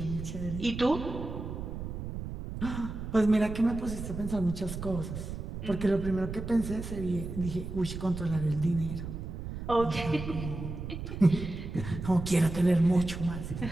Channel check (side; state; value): right; noise; rumble, 7 dB below the sound